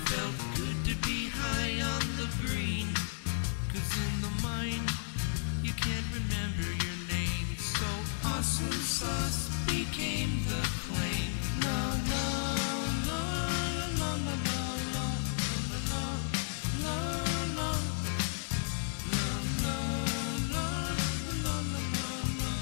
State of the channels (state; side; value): silent; right; digital silence